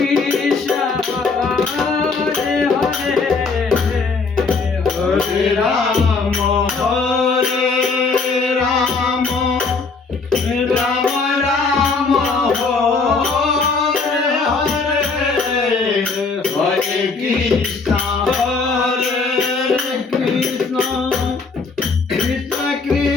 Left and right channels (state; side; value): quieter; right; 4.5 dB